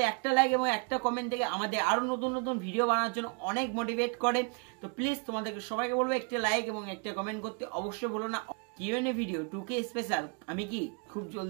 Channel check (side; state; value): left; quieter; 37.3 dB